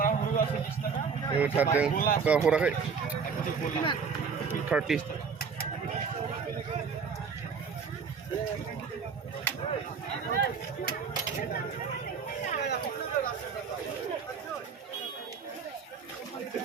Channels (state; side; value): quieter; left; 5.8 dB